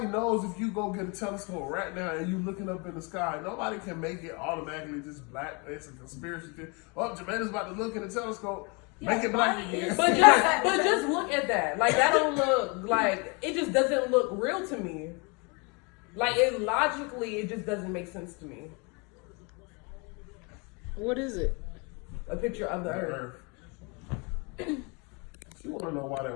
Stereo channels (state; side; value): quieter; right; 31.2 dB